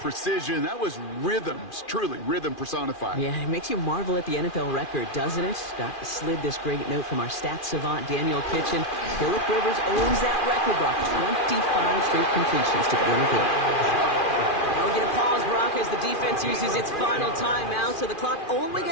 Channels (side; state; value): right; late; 2.4 ms